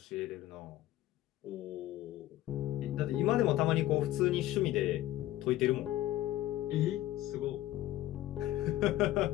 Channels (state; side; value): quieter; right; 14.8 dB